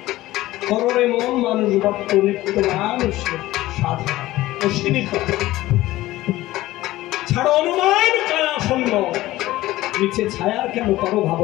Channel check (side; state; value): right; quieter; 16.7 dB